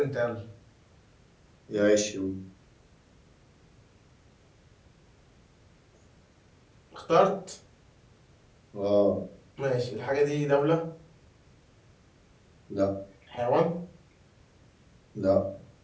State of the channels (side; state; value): both; identical; correlation 1.00